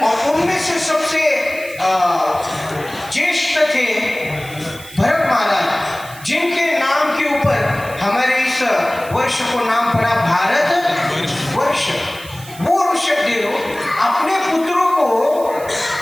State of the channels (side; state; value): right; noise; hiss, 18 dB below the sound